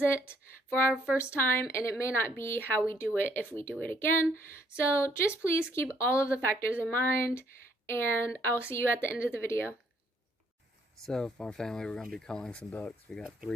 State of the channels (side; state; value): both; normal; correlation 0.67